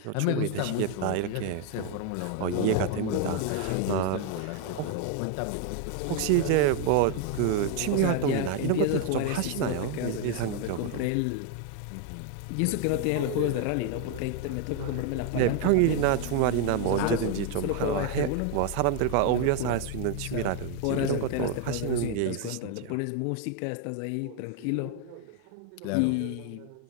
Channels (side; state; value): both; different; correlation 0.01